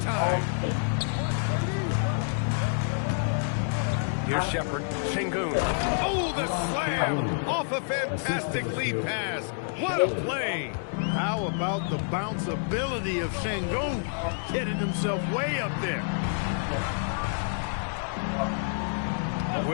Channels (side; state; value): right; silent; digital silence